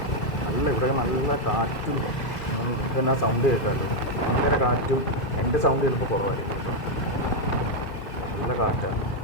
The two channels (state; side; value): late; right; 2.5 ms